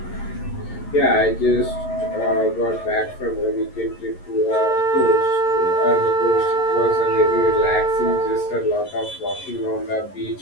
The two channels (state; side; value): late; right; 11 ms